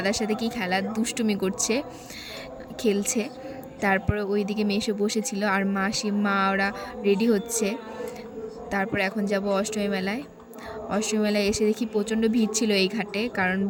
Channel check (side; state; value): both; identical; correlation 1.00